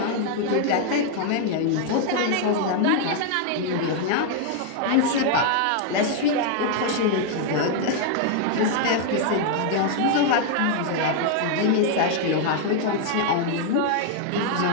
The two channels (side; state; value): both; different; correlation 0.00